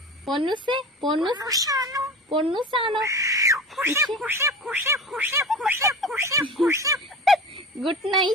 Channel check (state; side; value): normal; both; correlation 0.31